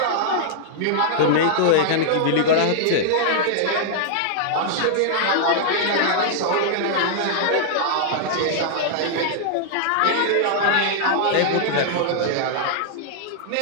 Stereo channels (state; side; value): different; both; correlation -0.01